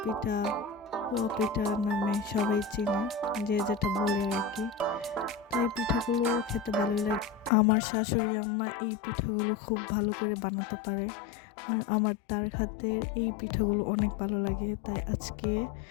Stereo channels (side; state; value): right; drops out; at 7.5 s